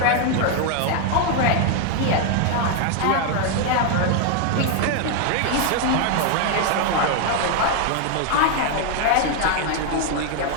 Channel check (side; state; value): both; different; correlation 0.00